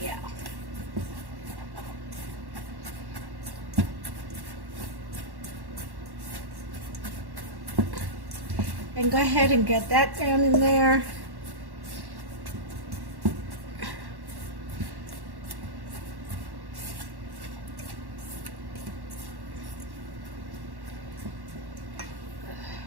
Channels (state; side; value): late; left; 1.1 ms